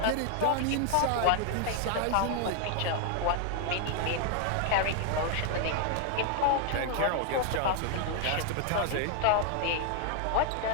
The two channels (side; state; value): both; different; correlation 0.00